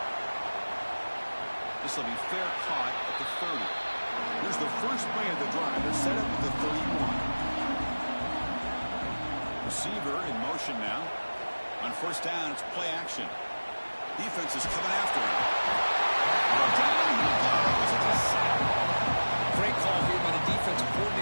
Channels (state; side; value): inverted; both; correlation -1.00